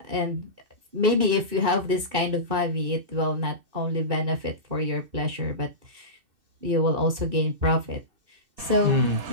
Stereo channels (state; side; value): late; left; 2.6 ms